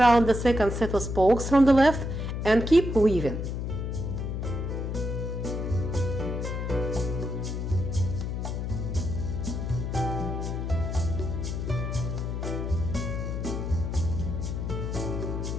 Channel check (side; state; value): left; noise; hum, 3 dB below the sound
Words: the second set of spokes from the left and keep weaving.